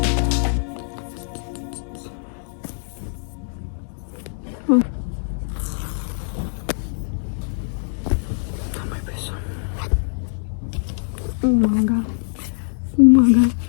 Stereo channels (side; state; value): right; silent; digital silence